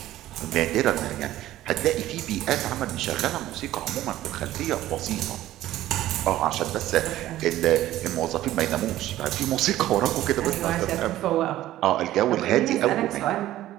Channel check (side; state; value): left; quieter; 14.4 dB